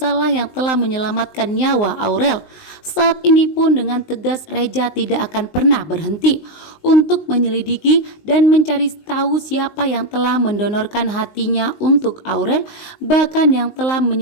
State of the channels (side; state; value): right; late; 19 ms